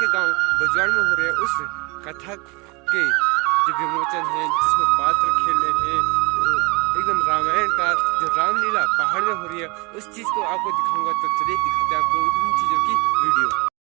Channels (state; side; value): quieter; left; 28.0 dB